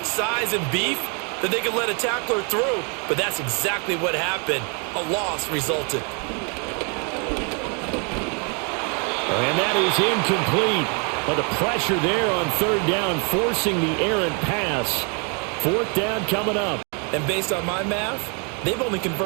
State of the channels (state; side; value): quieter; left; 35.9 dB